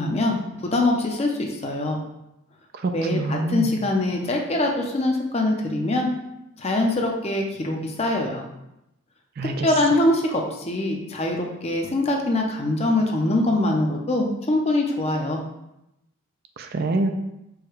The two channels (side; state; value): both; normal; correlation 0.56